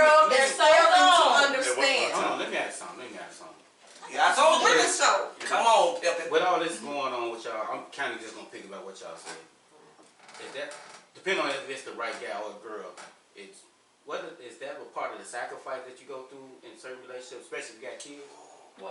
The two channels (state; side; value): identical; both; correlation 1.00